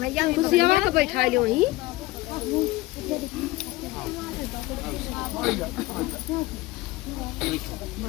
खुशी को बैठा लो वहीं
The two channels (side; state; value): right; quieter; 19.7 dB